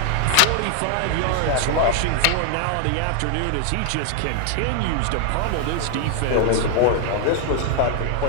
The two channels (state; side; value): different; both; correlation 0.00